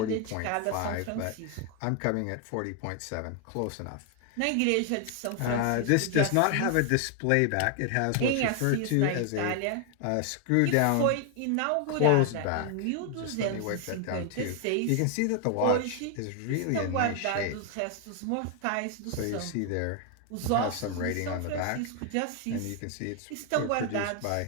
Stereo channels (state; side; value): different; both; correlation 0.00